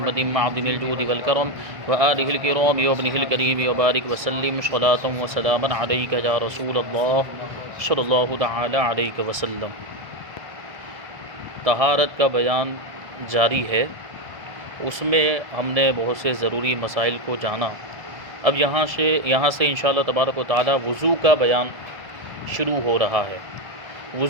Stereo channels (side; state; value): left; late; 1.5 ms